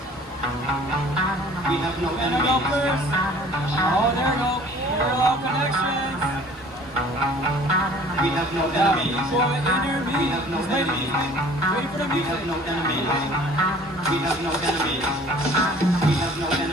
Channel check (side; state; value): both; normal; correlation 0.50